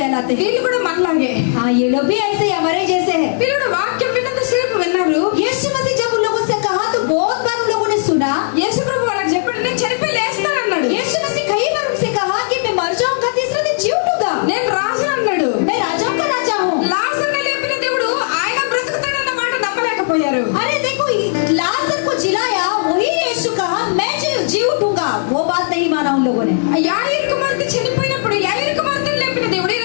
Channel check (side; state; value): right; silent; digital silence